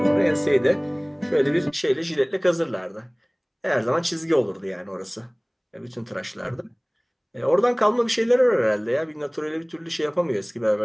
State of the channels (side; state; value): both; identical; correlation 1.00